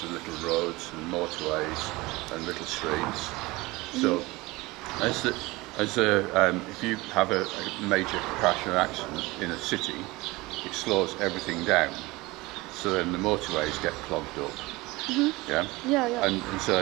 of little roads and motorways and little streets. So, if you have a major crash or accident in a city, it slows everything down. So then the motorways get clogged up. Yeah? And so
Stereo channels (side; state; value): left; quieter; 21.7 dB